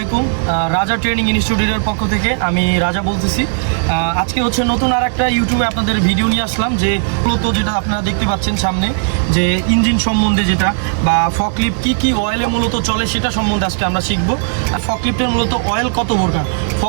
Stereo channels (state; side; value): silent; left; digital silence